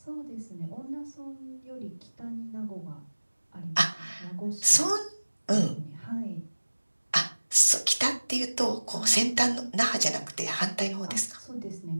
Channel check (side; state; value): both; inverted; correlation -1.00